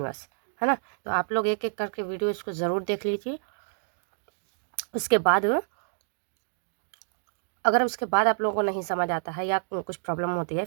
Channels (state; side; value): silent; left; digital silence